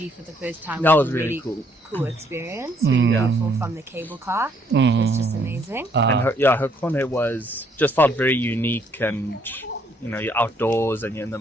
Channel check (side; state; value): both; normal; correlation 0.68